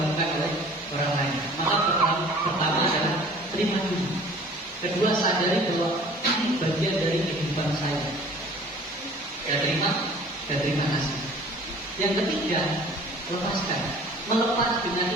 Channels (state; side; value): normal; both; correlation 0.49